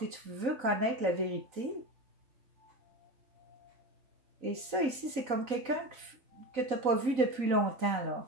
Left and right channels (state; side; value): late; left; 3.9 ms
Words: Tu veux connaître la vérité. Et ça, ici, c'est comme quelqu'un que tu n'as pas vu depuis longtemps,